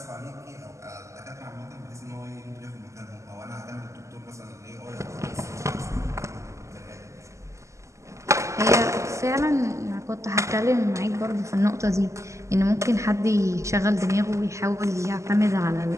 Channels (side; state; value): left; late; 0.14 ms